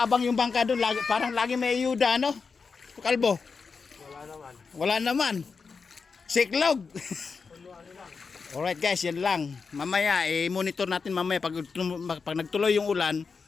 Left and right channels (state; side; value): quieter; right; 5.0 dB